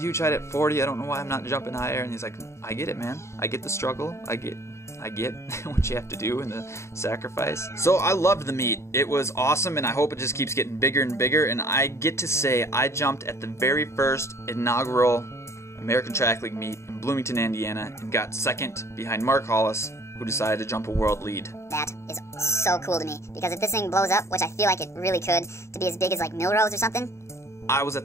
huge height at 40. I don't know why I'm not jumping higher. And he's like, I get it, man. I get the struggle. I get what you have to do and the sacrifice. So I loved the meet. It was awesome, and I hope it just keeps getting bigger and bigger. And I get to say I jumped at the very first inaugural American Track League meet in Bloomington, Indiana, and got second behind Mark Hollis, who decided to jump a world lead. That is so cool to me, because if this thing blows up, which I feel like it really could, to be as big as like Milrose or something. I was at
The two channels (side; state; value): right; late; 0.13 ms